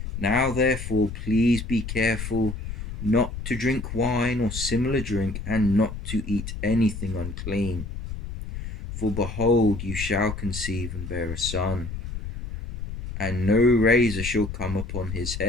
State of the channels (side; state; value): left; noise; rumble, 8 dB below the sound